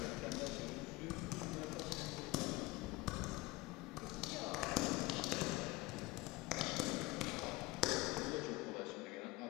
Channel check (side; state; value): right; quieter; 21.6 dB